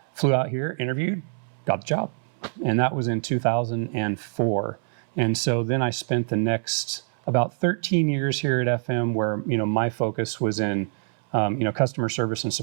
flew out here, interviewed, got the job. And that was in 2004. And so then I spent the next about 13 years here at FM where, my focus was in, customer service and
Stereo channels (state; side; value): silent; left; 62 dB below the other